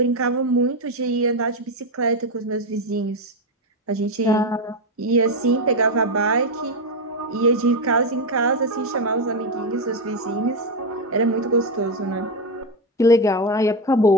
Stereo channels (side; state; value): both; normal; correlation 0.09